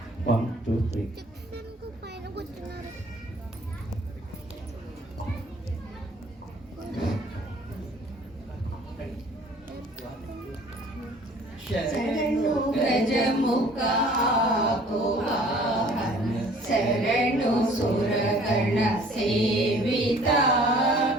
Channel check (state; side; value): normal; both; correlation 0.53